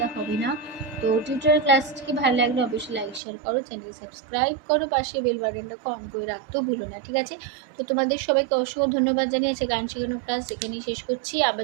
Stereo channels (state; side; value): drops out; left; at 3.2 s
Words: হবে না। তো টিউটোরিয়াল ক্লাসটিকে ভালো লাগলে অবশ্যই লাইক শেয়ার করো, চ্যানেল সাবস্ক্রাইব করো, পাশে বেল বাটনটা অন করে রাখতেও ভুলো না, ঠিক আছে? তো তোমাদের সবাইকে অসংখ্য ধন্যবাদ জানিয়েছে। গান শেখানোর ক্লাস এখানেই শেষ করছি। আবার